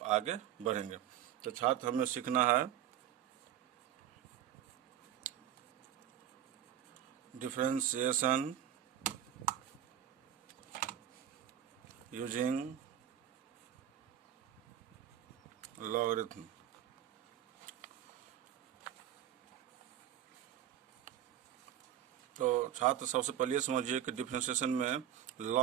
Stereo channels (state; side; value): quieter; left; 10.9 dB